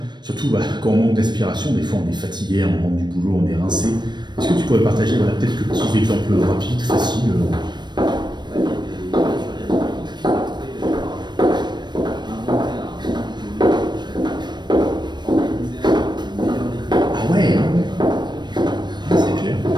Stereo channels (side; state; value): left; late; 0.21 ms